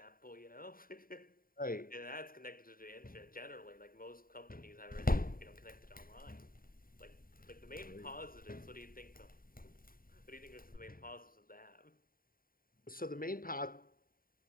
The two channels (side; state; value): right; late; 0.42 ms